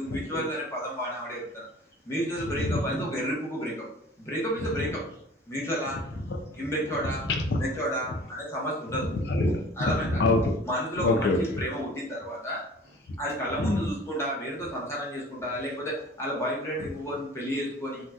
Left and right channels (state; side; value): normal; both; correlation 0.46